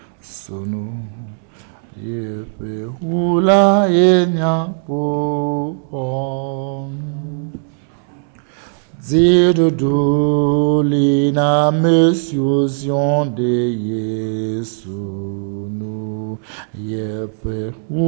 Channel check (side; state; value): left; silent; digital silence